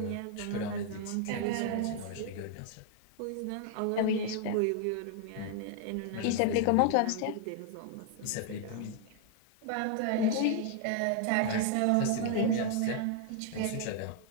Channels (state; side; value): different; both; correlation 0.00